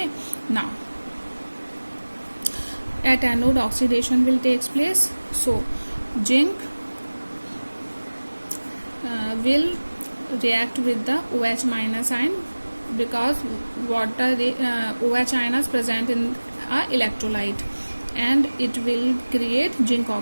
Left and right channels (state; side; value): inverted; both; correlation -1.00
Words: now at anode oxidation will takes place. So zinc will react with the OH minus ion because water OH ion is present in a electrolyte, and it will create zinc